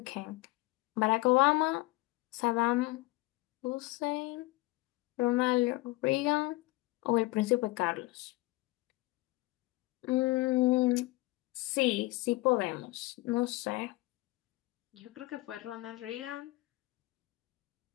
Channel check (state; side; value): quieter; right; 20.4 dB